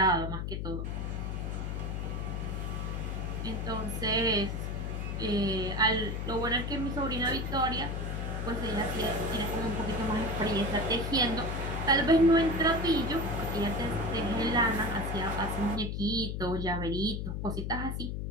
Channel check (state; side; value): noise; left; hum, 3 dB below the sound